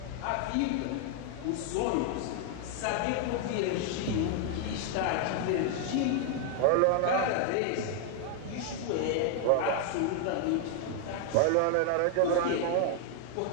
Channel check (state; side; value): different; both; correlation 0.00